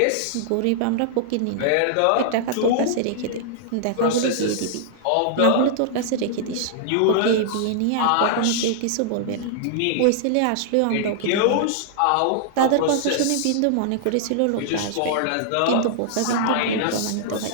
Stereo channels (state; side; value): different; both; correlation -0.01